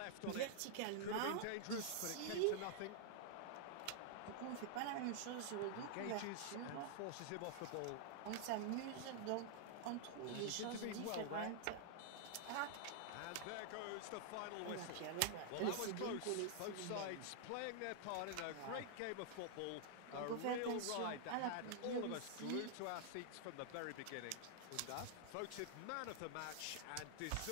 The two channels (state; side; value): different; both; correlation -0.01